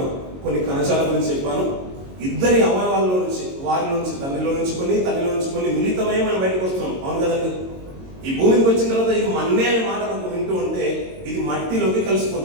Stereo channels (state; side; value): late; left; 22 ms